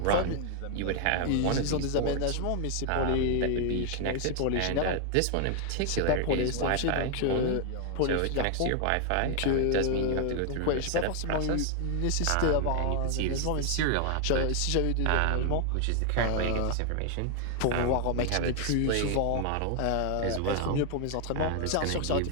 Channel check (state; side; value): different; both; correlation 0.00